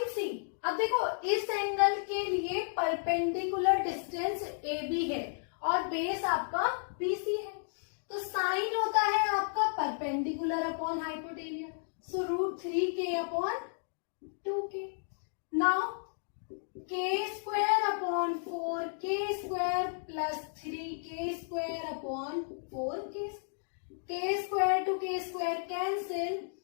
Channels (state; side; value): silent; right; digital silence